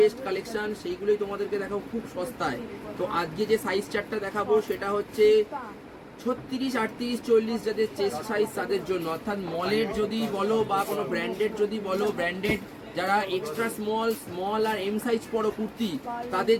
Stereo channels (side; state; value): both; identical; correlation 1.00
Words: কালেকশন, সেইগুলোই তোমাদেরকে দেখাবো খুব সস্তায়। তো আজকে যে সাইজ চার্টটা দেখাবো সেটা হচ্ছে 36, 38, 40 যাদের চেস্ট সাইজ তাদের জন্য, অর্থাৎ মলের যদি বলো বা কোনো ব্র্যান্ডেড যদি বলো, ব্র্যান্ডেড যারা এক্সট্রা স্মল আর এম সাইজ পড়ো কুর্তি